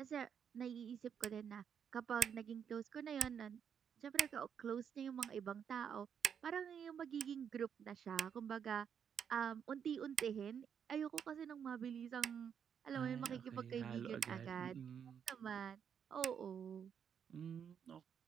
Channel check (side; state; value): left; quieter; 7.8 dB